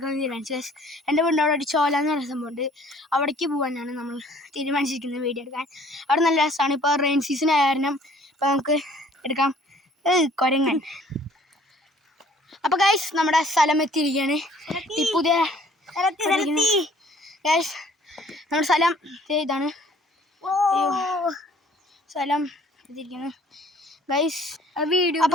തീരുമാനിച്ചു. എൻ്റെ വീടിൻ്റെ അവിടെ ഒരു ചോല എന്ന് പറയുന്ന സംഭവമുണ്ട്, അവിടേക്ക് പോകാനാണ് നമ്മൾ തീരുമാനിച്ചിരിക്കുന്നത് വീഡിയോ എടുക്കാൻ. അവിടെ നല്ല രസമാണ്. ഇപ്പോൾ റെയിൻ സീസൺ ആയ കാരണം ഇപ്പോൾ നമുക്ക് എടുക്കാം. കുരങ്ങൻ. അപ്പോൾ ഗൈസ്, നമ്മുടെ സ്ഥലം എത്തിയിരിക്കുകയാണ്. ടിപ്പുദേ ഗൈസ്, നമ്മുടെ സ്ഥലം ഇതാണ്. സ്ഥലം എത്തിയിരിക്കുന്നു ഗൈസ്.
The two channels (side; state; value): both; normal; correlation 0.56